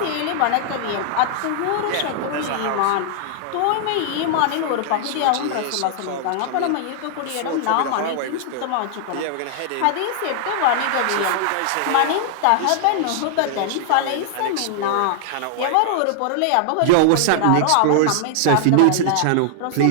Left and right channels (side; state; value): both; different; correlation -0.01